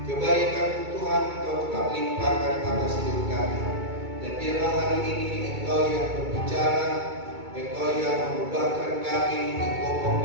kebaikan Tuhan Engkau tetap limpahkan atas hidup kami. Dan biarlah hari ini Engkau yang berbicara, Engkau yang mengubahkan kami, Engkau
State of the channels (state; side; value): late; left; 2.2 ms